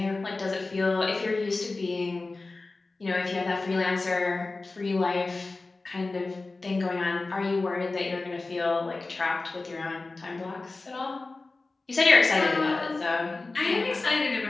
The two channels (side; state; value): right; quieter; 3.5 dB